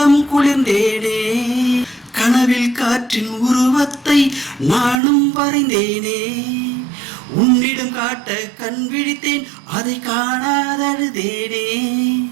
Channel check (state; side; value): drops out; left; at 5.0 s